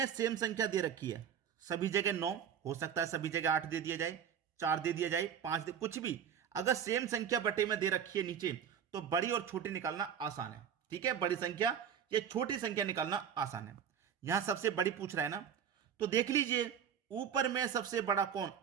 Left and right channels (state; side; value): quieter; left; 8.4 dB